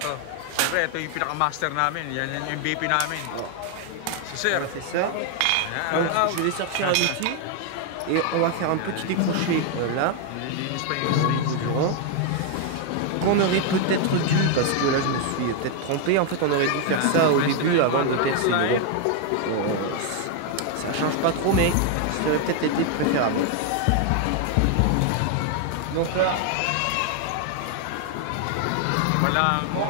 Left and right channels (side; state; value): both; different; correlation 0.00